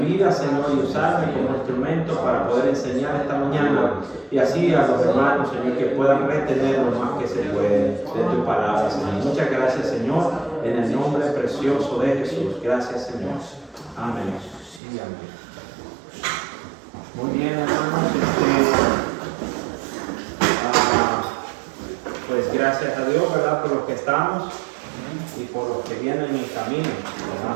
vida, Señor, y usarme como instrumento para poder enseñar esta mañana y así a los hermanos, Señor, que puedan retener lo más que se puede de tu palabra, Señor. Muchas gracias, Señor, en el nombre precioso de Jesús. Gracias, Señor. Amén. Sí, amén. Muy bien, hermanos. Pues gracias a Dios, ¿verdad? Por los que estamos y por los que vienen en camino,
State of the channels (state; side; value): drops out; left; at 14.8 s